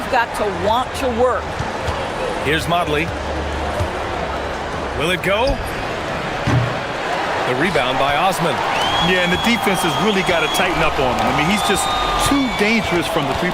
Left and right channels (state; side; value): identical; both; correlation 1.00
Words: got to want to work. Here's Modley. Will it go? The rebound by Osman. Yeah, and the defense has really got to tighten up on him. I mean, he's just too dangerous from the